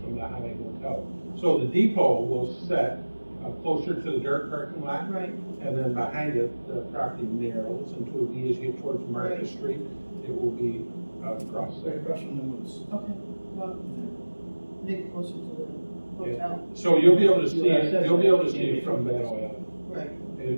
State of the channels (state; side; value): inverted; both; correlation -1.00